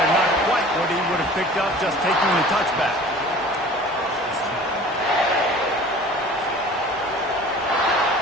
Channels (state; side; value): normal; both; correlation 0.44